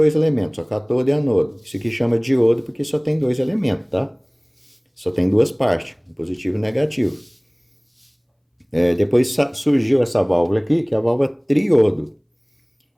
elementos, só cátodo e anodo. Isso aqui chama diodo porque só tem 2 elementos, tá? Só tem 2 partes, positivo e negativo. Depois surgiu essa válvula aqui, que é a válvula triodo.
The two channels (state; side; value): identical; both; correlation 1.00